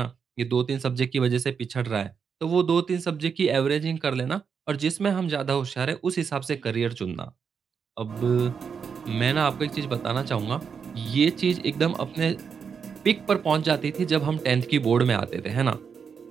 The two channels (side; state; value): left; quieter; 6.4 dB